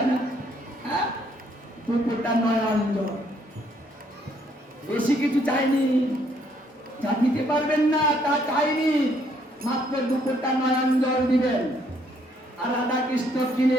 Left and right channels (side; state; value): both; normal; correlation 0.68